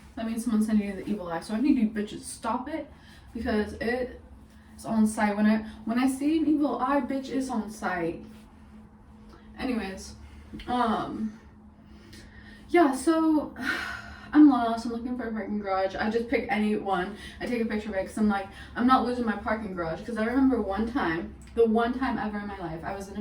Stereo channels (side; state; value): both; identical; correlation 1.00